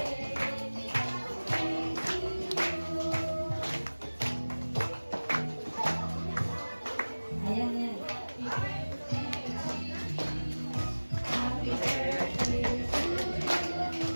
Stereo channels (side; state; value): both; inverted; correlation -1.00